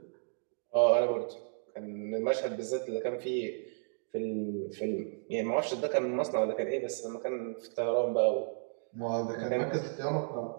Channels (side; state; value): left; silent; digital silence